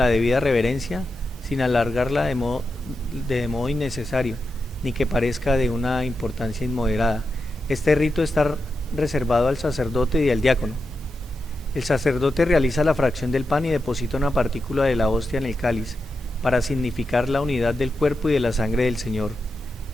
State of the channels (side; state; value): both; normal; correlation 0.88